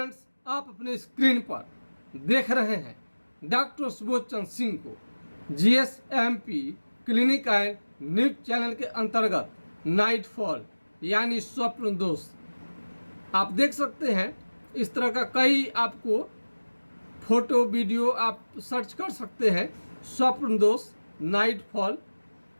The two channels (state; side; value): inverted; both; correlation -1.00